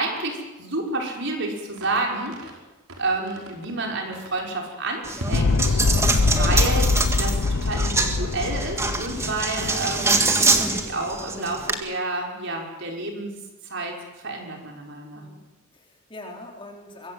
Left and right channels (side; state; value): both; normal; correlation 0.29